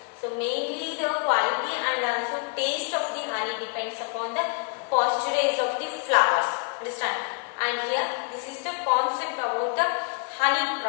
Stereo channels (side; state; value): right; quieter; 37.6 dB